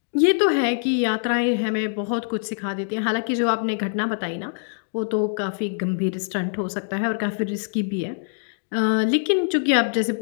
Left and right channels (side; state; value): right; silent; digital silence